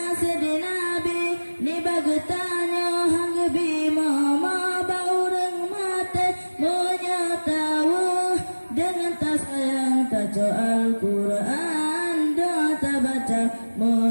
di Nabi ni bagetanya hanggebi mama ba urang mate menyatawa dengan tak sayang taco Al-Quran doa tak baca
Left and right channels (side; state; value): both; inverted; correlation -1.00